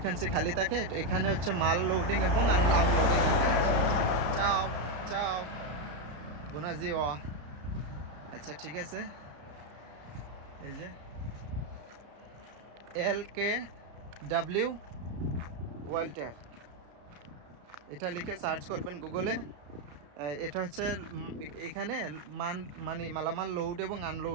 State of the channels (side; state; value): left; late; 34 ms